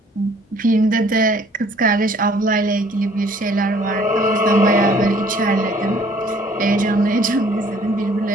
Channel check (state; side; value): normal; both; correlation 0.58